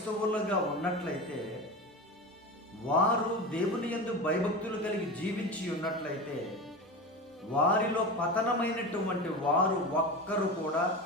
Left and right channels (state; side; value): normal; both; correlation 0.26